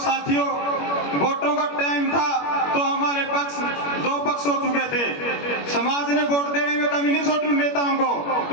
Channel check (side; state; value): right; late; 21 ms